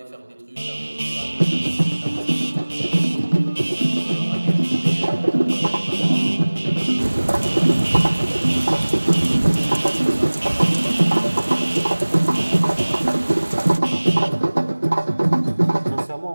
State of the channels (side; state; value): both; inverted; correlation -1.00